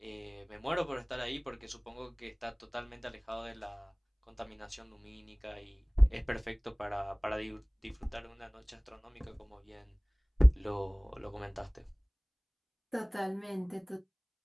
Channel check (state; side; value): identical; both; correlation 1.00